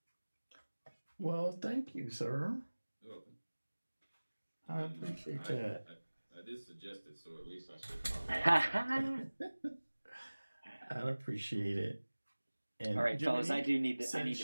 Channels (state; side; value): inverted; both; correlation -1.00